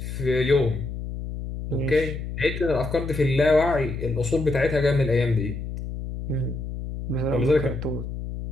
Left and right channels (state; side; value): noise; left; hum, 7 dB below the sound